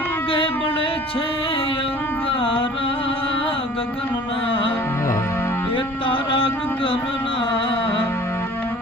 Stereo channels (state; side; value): normal; both; correlation 0.48